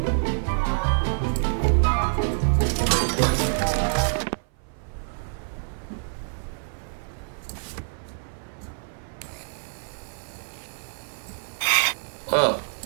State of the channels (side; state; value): left; silent; 56 dB below the other